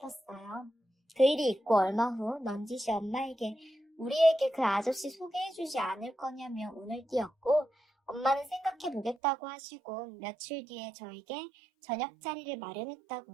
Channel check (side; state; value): left; drops out; at 9.2 s